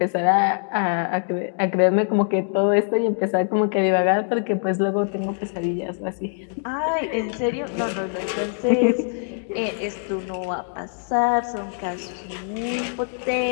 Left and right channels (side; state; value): right; silent; digital silence